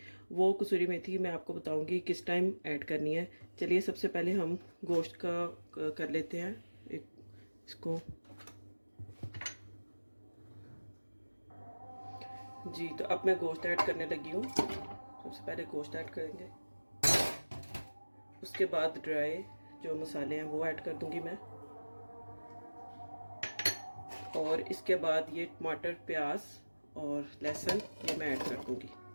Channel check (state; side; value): inverted; both; correlation -1.00